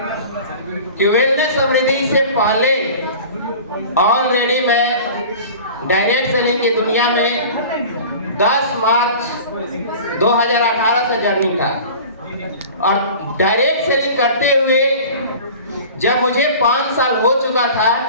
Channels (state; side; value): inverted; both; correlation -0.40